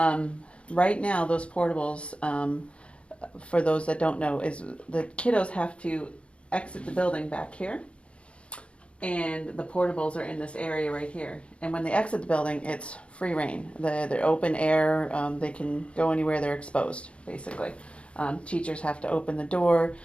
right now, those portables, for those that don't know, is the kiddos have to exit the building back here, and the portables are in this area right here. And when they exit the building, it's free reign. They're open air. They can go anywhere. They're exposed, basically. Teachers have to open the door.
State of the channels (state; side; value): late; right; 0.060 ms